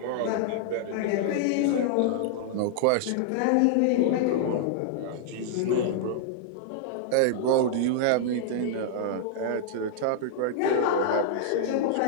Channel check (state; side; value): different; both; correlation -0.01